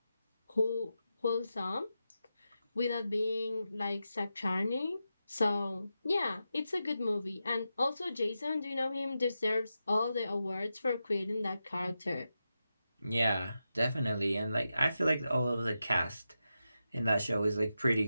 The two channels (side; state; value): both; inverted; correlation -0.89